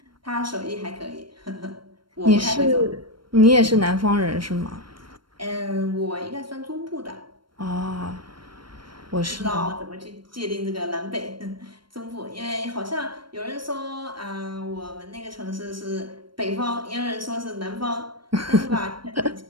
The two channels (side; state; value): left; late; 0.73 ms